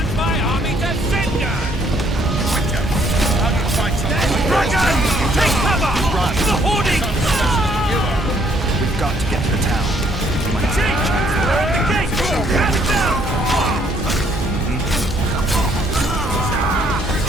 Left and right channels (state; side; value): normal; both; correlation 0.66